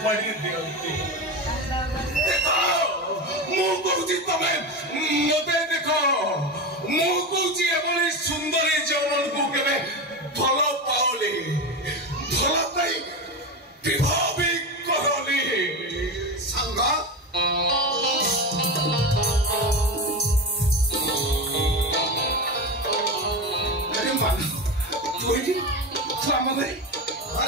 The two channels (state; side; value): normal; both; correlation 0.20